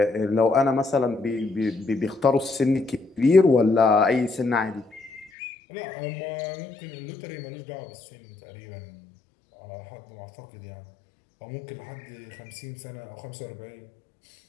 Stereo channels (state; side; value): drops out; right; at 5.3 s